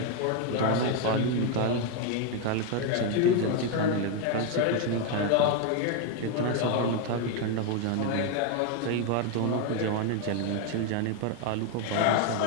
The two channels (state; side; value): different; both; correlation 0.01